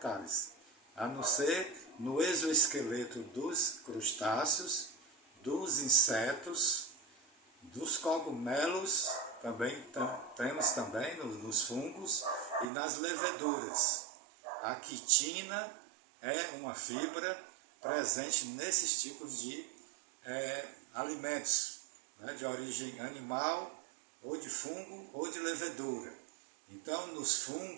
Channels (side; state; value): left; drops out; at 12.7 s